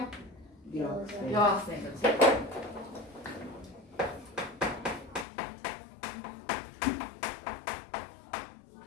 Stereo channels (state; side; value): drops out; right; at 5.2 s